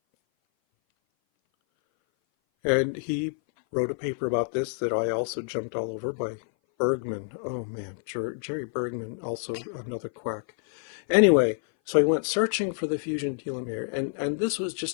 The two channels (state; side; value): silent; right; 57 dB below the other